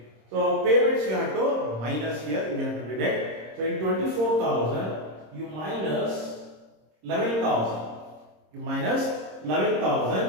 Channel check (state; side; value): late; left; 26 ms